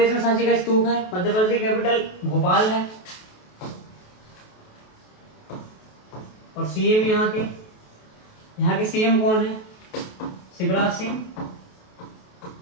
में सांची का स्तूप है। मध्य प्रदेश की कैपिटल भोपाल है। और सीएम यहाँ के सीएम कौन है, शिवराज सिंह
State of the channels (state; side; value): late; right; 28 ms